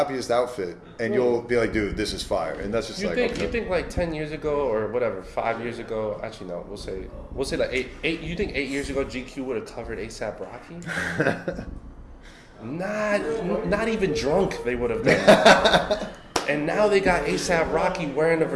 outfit, and you'll be like, dude, this is fire. And that's just You like, think okay. you think like 10 years ago or whatever, 5 years ago? Actually, no. We'll say like eight. You think 8 years ago GQ would have covered ASAP Rocky? Not even drunk they would have done that. And now they got ASAP Rocky wearing a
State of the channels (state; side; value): identical; both; correlation 1.00